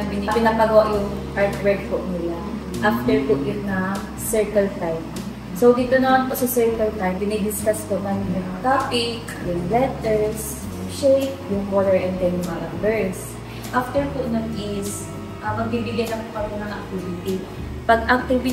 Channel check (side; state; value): both; identical; correlation 1.00